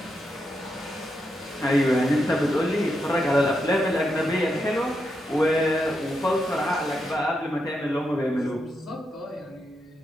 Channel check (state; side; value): normal; both; correlation 0.84